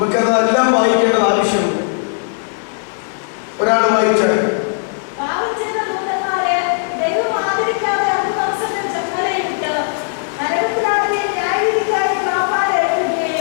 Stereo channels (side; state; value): right; silent; digital silence